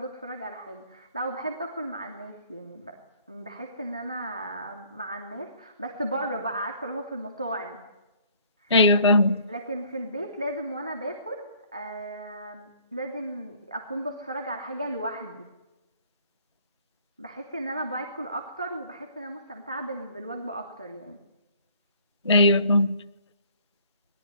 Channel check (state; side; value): inverted; both; correlation -0.57